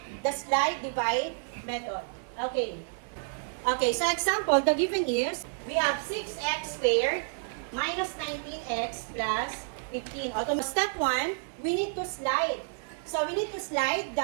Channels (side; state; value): left; silent; digital silence